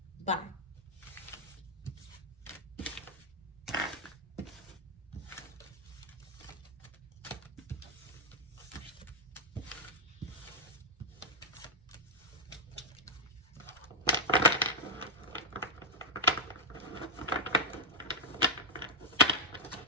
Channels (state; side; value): normal; both; correlation -0.05